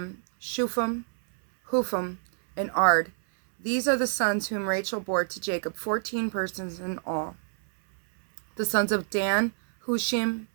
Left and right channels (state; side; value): silent; left; 60 dB below the other